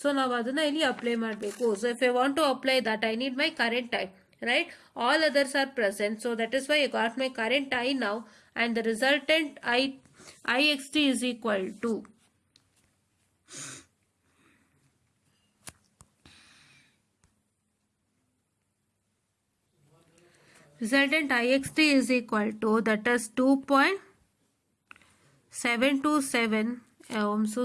So ನಾವು ಅದನ್ನ ಇಲ್ಲಿ apply ಮಾಡಬೇಕು. So if I want to apply that, I need my current I. Right, all others are present, so that is why I got my current I now, and the resultant IXT is equal to resultant IXT is equal to, that is 2.727. I'm so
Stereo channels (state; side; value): identical; both; correlation 1.00